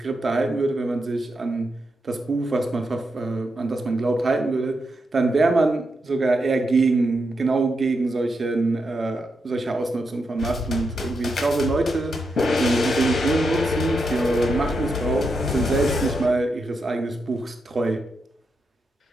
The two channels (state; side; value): normal; both; correlation 0.84